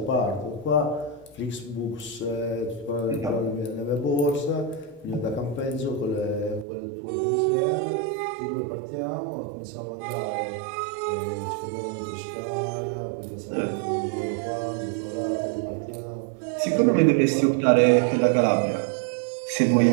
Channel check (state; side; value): drops out; left; at 6.7 s